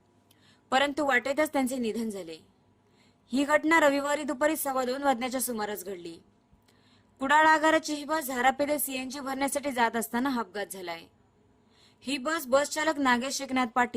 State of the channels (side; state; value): both; identical; correlation 1.00